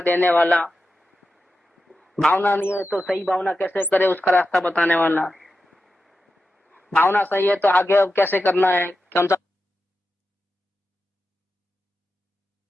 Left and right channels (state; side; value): normal; both; correlation 0.91